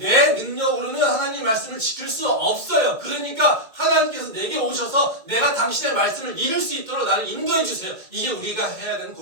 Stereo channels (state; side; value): late; left; 2.1 ms